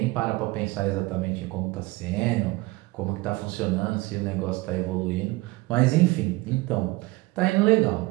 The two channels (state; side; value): quieter; left; 21.5 dB